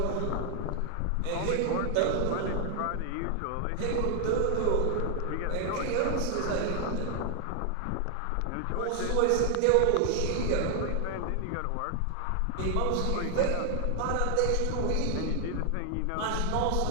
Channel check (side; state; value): both; different; correlation 0.00